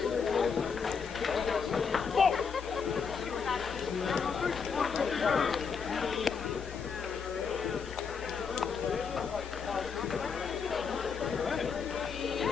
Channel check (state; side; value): quieter; right; 5.9 dB